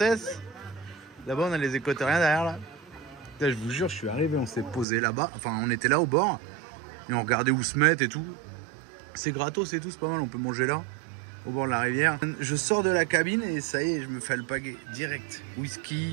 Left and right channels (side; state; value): left; drops out; at 4.9 s